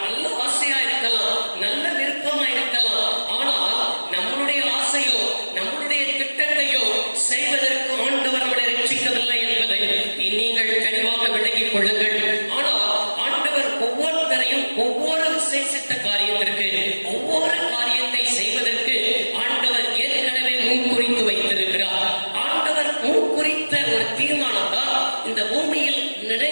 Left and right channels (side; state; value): both; inverted; correlation -1.00